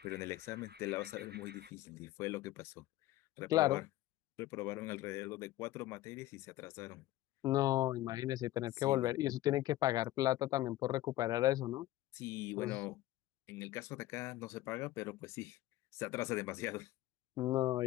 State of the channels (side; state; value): right; quieter; 15.7 dB